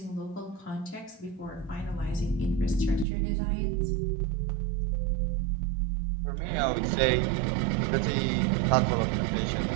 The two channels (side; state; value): left; drops out; at 3.1 s